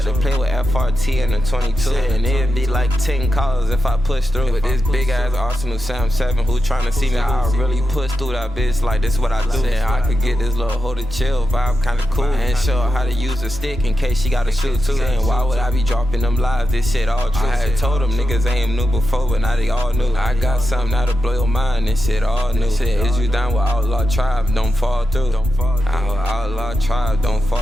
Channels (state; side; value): normal; both; correlation 0.88